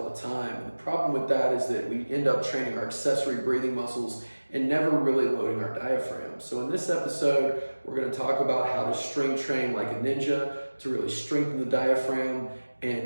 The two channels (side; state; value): both; inverted; correlation -1.00